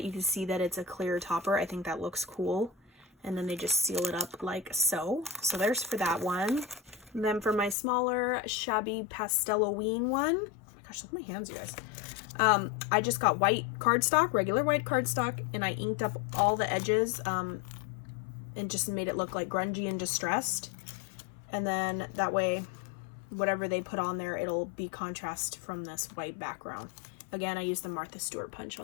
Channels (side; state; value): right; drops out; at 7.8 s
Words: you can see that it's a clear topper. I think that looks cool. And then they just seal it up like so. So there's for that one. And then for my smaller, shabby Pastel-o-ween one, oh my gosh, look at my hands, you guys. I just got white cardstock, regular white cardstock, and I inked up all the edges and just made it look like grungy and distressed. And then that way, whatever they put on there, it'll be contrast from this white background. Again, I used the Martha Stewart punch